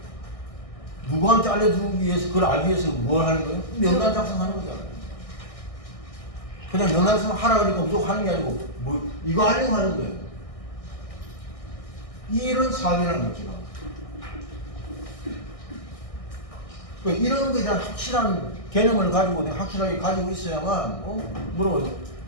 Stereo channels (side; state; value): right; late; 1.6 ms